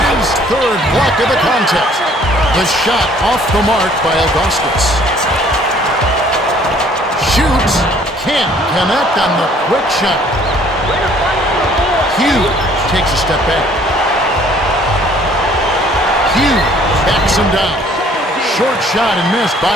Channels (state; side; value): normal; both; correlation 0.58